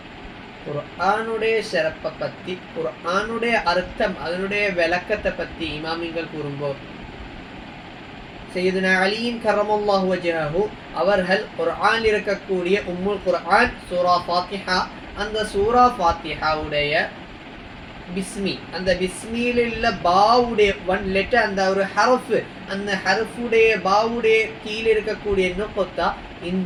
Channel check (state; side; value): identical; both; correlation 1.00